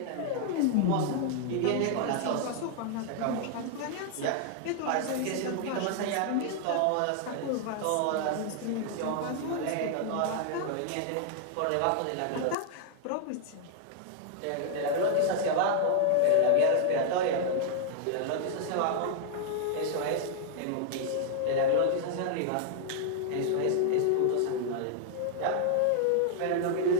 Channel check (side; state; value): both; different; correlation 0.00